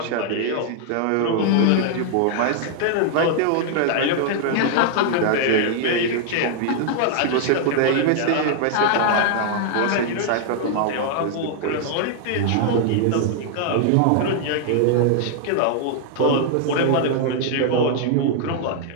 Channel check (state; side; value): different; both; correlation 0.00